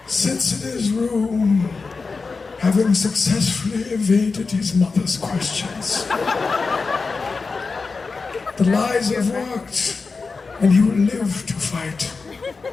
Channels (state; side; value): quieter; right; 4.4 dB